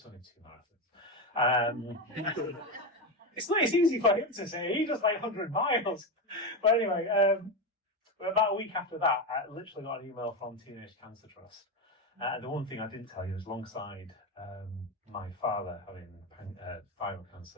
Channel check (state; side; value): normal; both; correlation 0.14